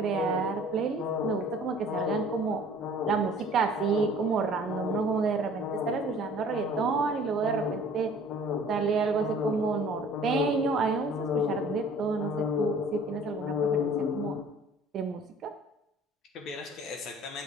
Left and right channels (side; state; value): both; normal; correlation 0.50